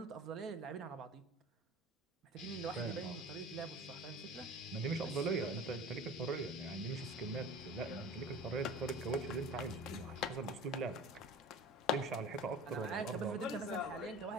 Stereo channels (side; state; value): both; normal; correlation 0.39